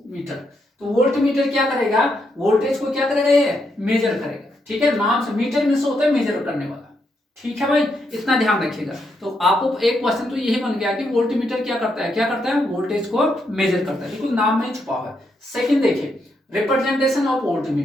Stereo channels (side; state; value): both; normal; correlation 0.79